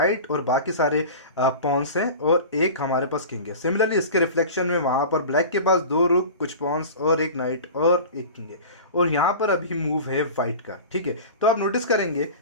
और बाकी सारे पॉन्स हैं और एक हमारे पास किंग है। सिमिलरली इसके रिफ्लेक्शन में वहाँ पर ब्लैक के पास 2 रुक, कुछ पॉन्स और एक नाइट और एक किंग है, और यहाँ पर अभी मूव है व्हाइट का, ठीक है। तो आप नोटिस करेंगे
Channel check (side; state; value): both; inverted; correlation -0.35